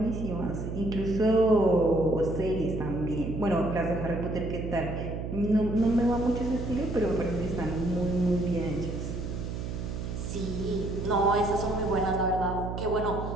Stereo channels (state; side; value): noise; right; hum, 5 dB below the sound